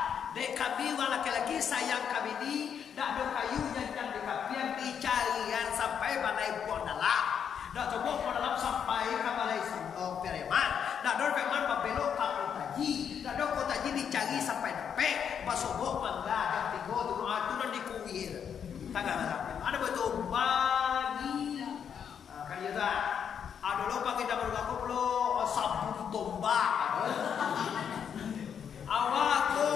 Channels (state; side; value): quieter; right; 7.8 dB